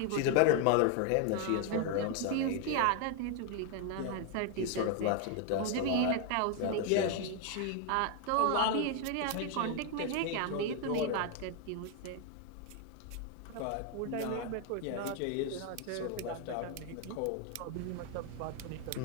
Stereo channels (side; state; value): both; different; correlation 0.01